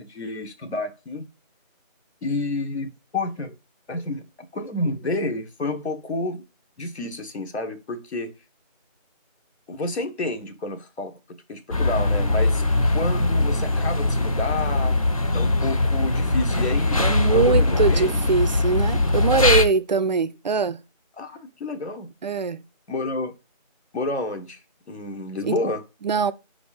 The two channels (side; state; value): both; inverted; correlation -0.47